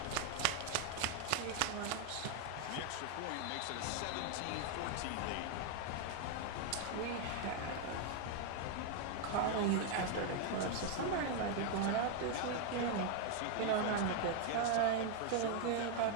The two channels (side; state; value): both; different; correlation 0.00